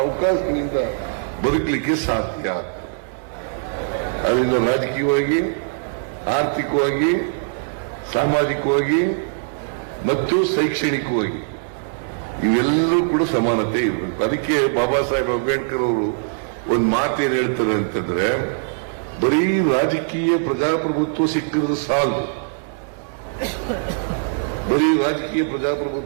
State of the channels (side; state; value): left; silent; digital silence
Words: ಅವಕಾಶಗಳಿಂದ ಬದುಕಲಿಕ್ಕೆ ಸಾಧ್ಯ ಆಗ್ತದೆ. ಅದರಿಂದ ರಾಜಕೀಯವಾಗಿ, ಆರ್ಥಿಕವಾಗಿ, ಸಾಮಾಜಿಕವಾಗಿ ಮತ್ತು ಶೈಕ್ಷಣಿಕವಾಗಿ ಇವೆಲ್ಲರೂ ಕೂಡ ಸಮಾನತೆ ಇರಬೇಕು. ಅದಕ್ಕೆ ಬಾಬಾ ಸಾಹೇಬ್ ಅಂಬೇಡ್ಕರ್ ಅವರು ಒಂದು ಮಾತೇನು ಹೇಳ್ತಾರೆ ಅಂತಂದ್ರೆ, ಬರೀ ರಾಜಕೀಯ ಪ್ರಜಾಪ್ರಭುತ್ವ ಸಿಕ್ಕಿದ್ರೆ ಸಾಲದು, ಬರೀ ರಾಜಕೀಯ